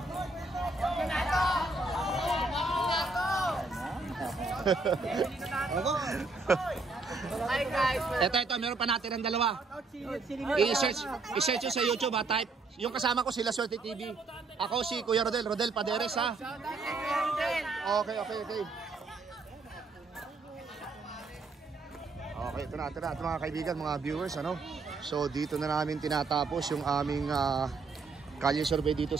Hi guys. Ito, meron pa natin ang dalawa. I-search sa YouTube ha, type. Yung kasama ko sila Swerte TV. Ako si Kuya Rodel Paderes ha. Okay. Okay, ito na mga kaibigan, mga viewers, ano. So dito na namin tinatapos yung aming Kalye Survey dito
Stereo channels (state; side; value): quieter; left; 3.8 dB